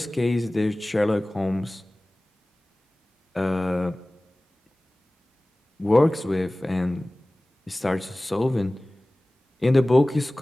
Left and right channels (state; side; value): normal; both; correlation 0.98